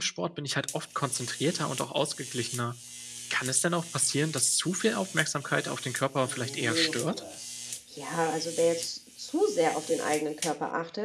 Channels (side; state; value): both; identical; correlation 1.00